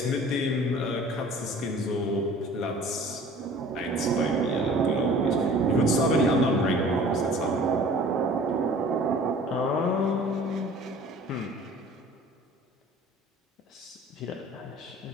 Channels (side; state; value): both; normal; correlation 0.47